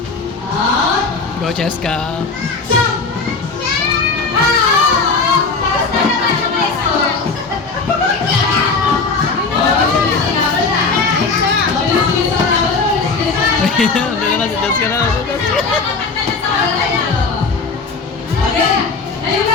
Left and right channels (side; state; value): right; quieter; 4.3 dB